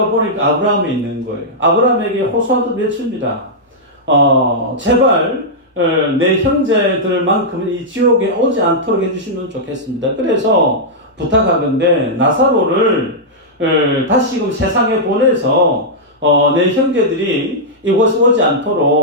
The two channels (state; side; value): normal; both; correlation -0.09